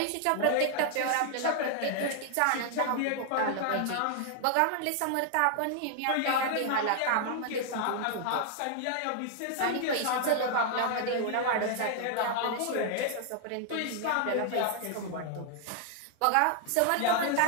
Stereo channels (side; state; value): both; different; correlation 0.00